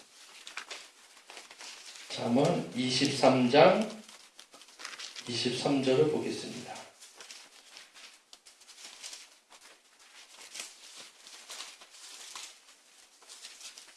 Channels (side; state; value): both; identical; correlation 1.00